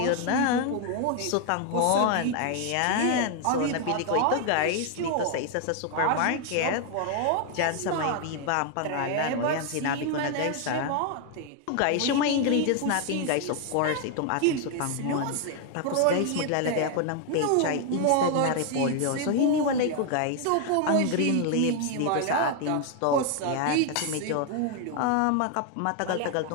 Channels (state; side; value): different; both; correlation 0.00